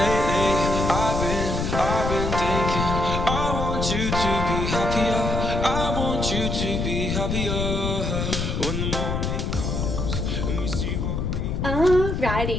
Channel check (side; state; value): left; noise; rumble, 1 dB below the sound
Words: been thinking, I want you to be happier. I want you to be happier when the morning comes and we see what we.